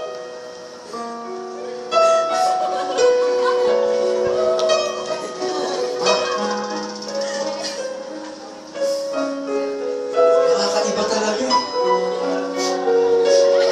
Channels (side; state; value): both; identical; correlation 1.00